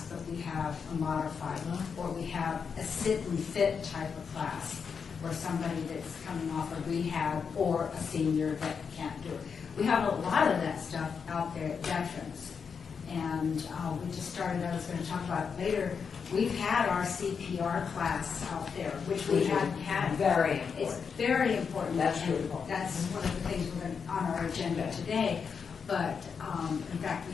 but we have a modified one, or we have a sit and fit type of class, or somebody that's coming off of rehab, or a senior that can't do it. We have a lot of that stuff out there at Veterans. And we just started, I was going to talk about it later, we've had our CPR class out there, which we hadn't had. Very It's important. very important. That's and really important. That's one of the things we're going on our agenda today. But in fact,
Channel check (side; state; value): right; quieter; 6.1 dB